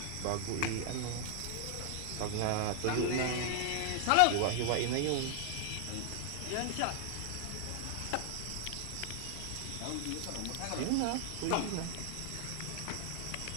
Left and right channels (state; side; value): different; both; correlation 0.00